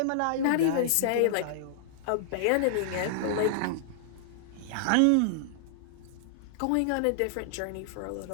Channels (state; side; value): different; both; correlation -0.01